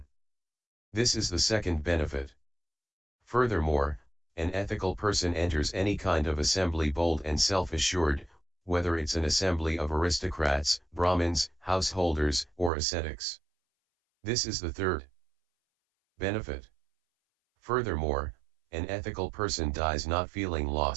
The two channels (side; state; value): left; drops out; at 12.7 s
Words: This is the second benefit. Furthermore, an ethical person enters any kind of assembly bold and self-assured, whether it's an assembly of aristocrats, Brahmins, householders, or ascetics. This is the third benefit. Furthermore, an ethical person dies not feeling